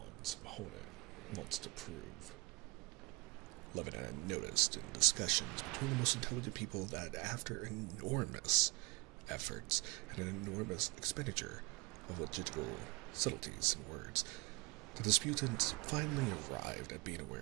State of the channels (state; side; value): quieter; left; 26.8 dB